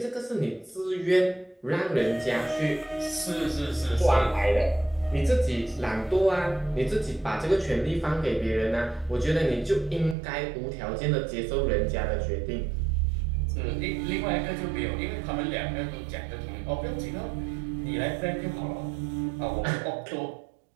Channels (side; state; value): left; drops out; at 10.2 s